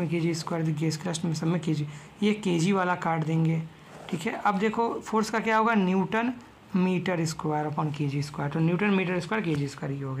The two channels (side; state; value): both; identical; correlation 1.00